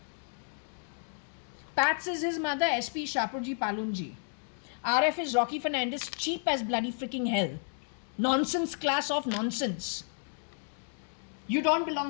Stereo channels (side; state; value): right; silent; 56 dB below the other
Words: Pats is his mother, SP Shapurji Palunji. RF is Rocky Fernandez, cheap as bloody freaking hell. Nonsense class of nonsense. You don't